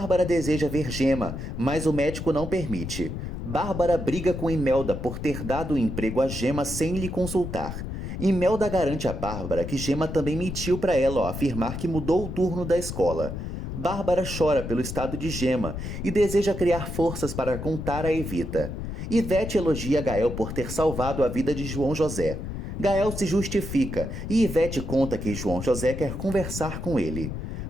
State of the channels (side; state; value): left; noise; rumble, 6 dB below the sound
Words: deseja ver Gema, mas o médico não permite. Bárbara briga com Imelda por ter dado o emprego a Gema sem lhe consultar. Imelda garante a Bárbara que Gema também mentiu para ela ao afirmar que mudou o turno da escola. Bárbara chora pelo estado de Gema e deseja criar forças para contar a Evita. Ivete elogia Gael por ter salvado a vida de João José. Gael se justifica e Ivete conta que João José quer conversar com ele.